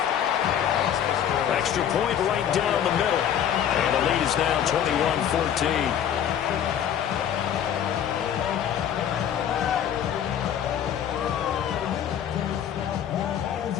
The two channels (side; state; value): right; quieter; 9.5 dB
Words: Extra point right down the middle. And the lead is now 21-14.